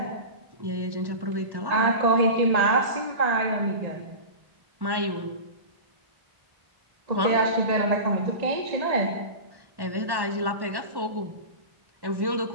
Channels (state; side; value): late; left; 1.1 ms